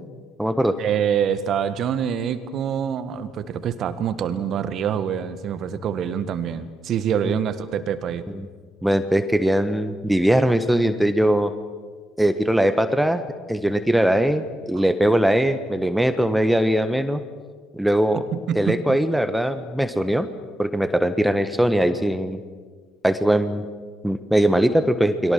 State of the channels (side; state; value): both; normal; correlation 0.88